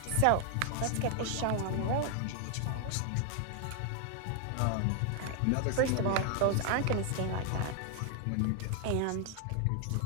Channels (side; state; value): both; different; correlation 0.00